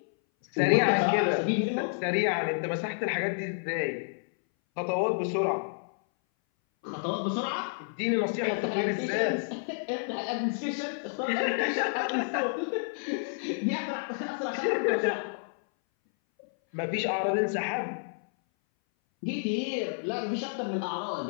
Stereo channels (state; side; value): silent; right; 58 dB below the other